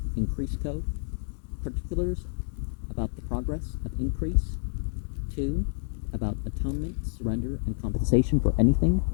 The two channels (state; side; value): silent; right; digital silence